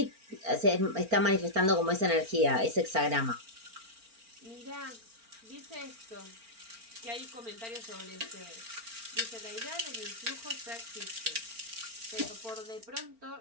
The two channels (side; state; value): left; late; 4.4 ms